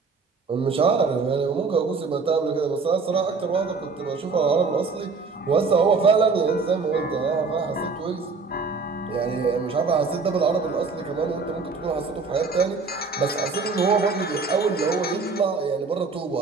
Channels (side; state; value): left; quieter; 4.5 dB